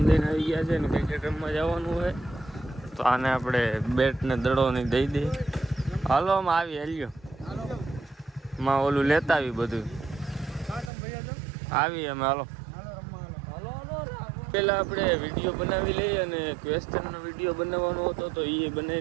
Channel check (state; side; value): drops out; left; at 10.9 s